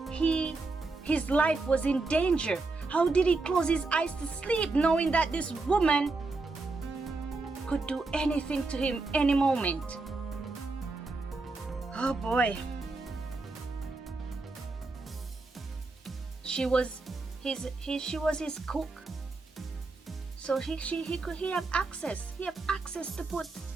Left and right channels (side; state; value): left; quieter; 3.6 dB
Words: his life was in danger? How did he close his eyes to sleep, knowing that this woman could do anything to him any moment? Oh boy. She was his cook. So he have access. He have access to put